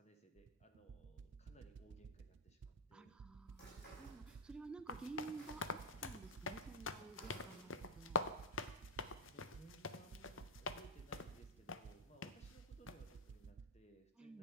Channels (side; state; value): both; normal; correlation -0.06